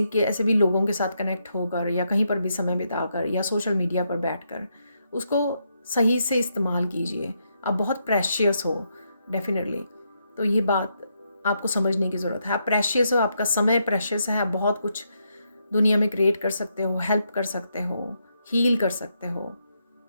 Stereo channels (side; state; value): both; inverted; correlation -0.79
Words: के ऐसे भी लोगों के साथ कनेक्ट होकर या कहीं पर भी समय बिताकर या सोशल मीडिया पर बैठकर, उसको सही से इस्तेमाल कीजिए। आप बहुत प्रेशियस हो डेफिनेटली, तो ये बात आपको समझने की ज़रूरत है। आप प्रेशियस हो, आपका समय प्रेशियस है, आप बहुत कुछ दुनिया में क्रिएट कर सकते हो, हेल्प कर सकते हो, हील कर सकते हो